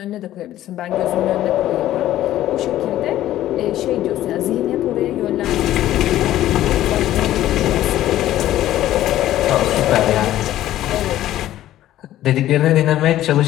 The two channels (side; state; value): right; quieter; 13.5 dB